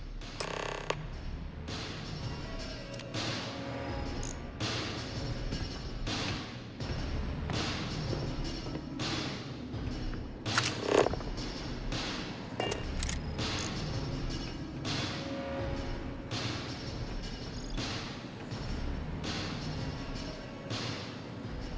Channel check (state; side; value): identical; both; correlation 1.00